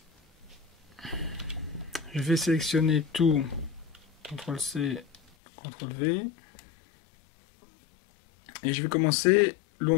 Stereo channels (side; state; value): right; drops out; at 5.2 s